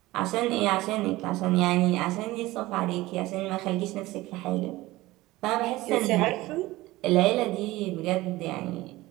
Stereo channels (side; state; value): left; quieter; 18.6 dB